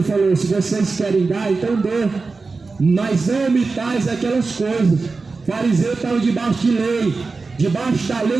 falou: se vocês querem dar, então dê, mas não omitais aquelas coisas. Fariseu estava debaixo de lei, debaixo da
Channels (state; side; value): quieter; left; 4.1 dB